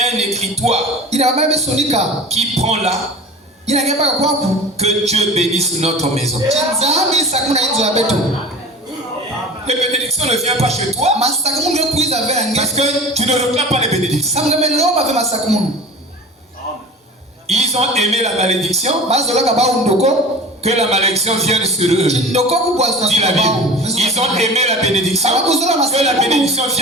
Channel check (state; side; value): normal; both; correlation 0.38